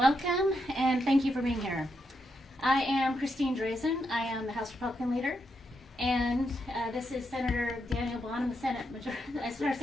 and thank you for being here. I am Christine Drazen. I am the House Republican leader, and this is Senator Daniel Bonham, the Senate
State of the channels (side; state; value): both; normal; correlation 0.82